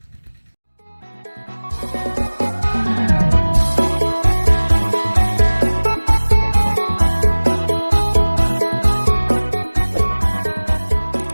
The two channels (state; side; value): inverted; both; correlation -1.00